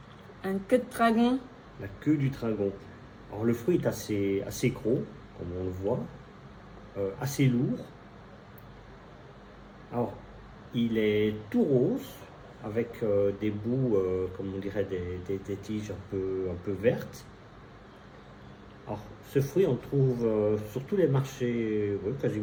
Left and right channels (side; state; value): both; identical; correlation 1.00